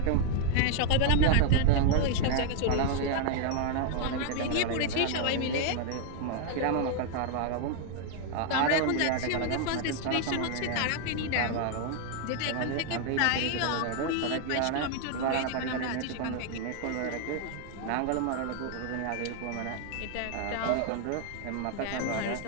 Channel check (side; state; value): both; different; correlation 0.00